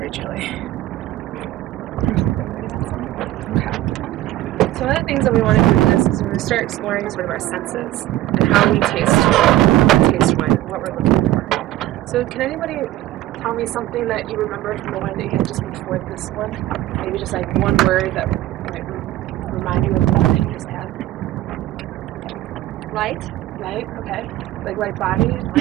chilly. Okay. So one of the things that we want to do with this is we to start exploring sort of our senses and how we taste wine and what we're looking for. So can anybody tell me something that you remember from the wine that you had just before this one? Maybe just like one word that might remind you of the one that you just had. Light. Light, okay. Like light body,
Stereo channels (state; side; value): quieter; left; 15.1 dB